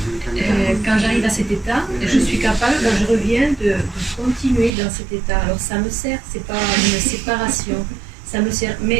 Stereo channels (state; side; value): drops out; left; at 4.7 s